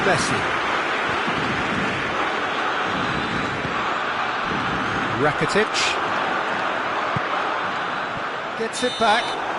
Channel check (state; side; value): identical; both; correlation 1.00